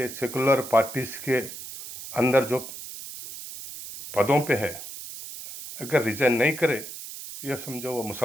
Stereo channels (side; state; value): right; noise; hiss, 11 dB below the sound